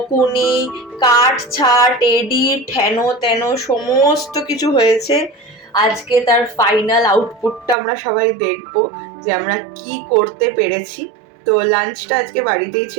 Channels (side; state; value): left; drops out; at 7.8 s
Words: কাট ছাট, এডিট, হেন তেন সমস্ত কিছু হয়েছে। আজকে তার ফাইনাল আউটপুটটা আমরা সবাই দেখবো যে আমরা কি করতে পেরেছি। তো লাঞ্চটা আজকে বাড়িতেই